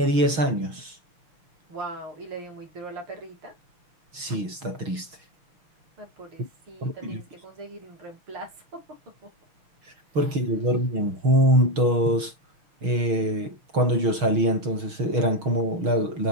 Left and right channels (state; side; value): late; left; 6.3 ms